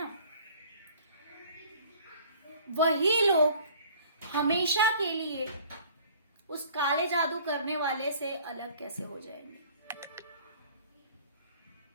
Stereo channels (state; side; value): inverted; both; correlation -0.52